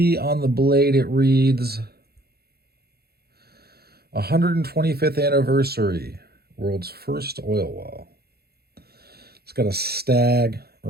on the blade, it reads 125th anniversary, world's first oil well. It's got a Stag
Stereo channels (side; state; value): left; late; 0.46 ms